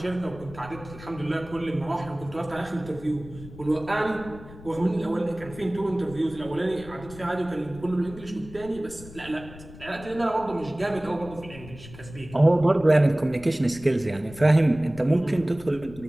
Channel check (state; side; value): noise; left; rumble, 17 dB below the sound